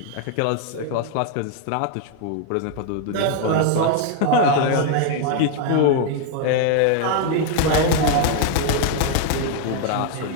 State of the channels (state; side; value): different; both; correlation 0.00